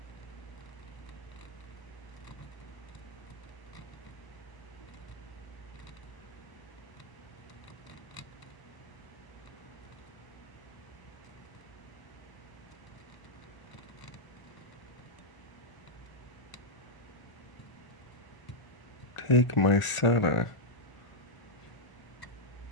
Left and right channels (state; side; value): late; right; 1.0 ms